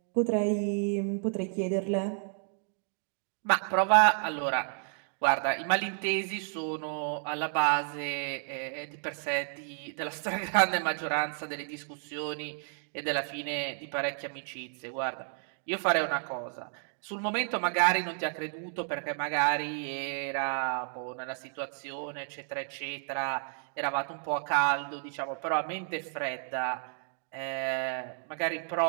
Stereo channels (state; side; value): silent; left; 57 dB below the other